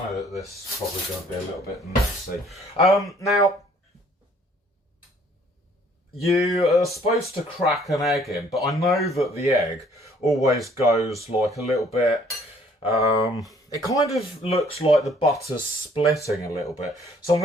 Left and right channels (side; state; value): both; normal; correlation 0.60